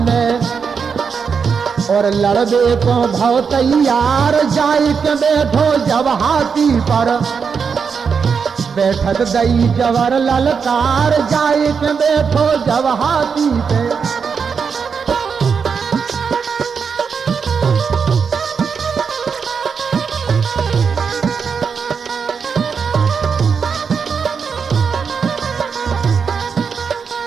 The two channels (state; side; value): quieter; left; 6.0 dB